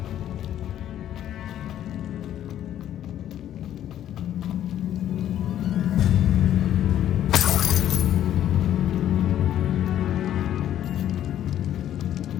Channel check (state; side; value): quieter; right; 11.3 dB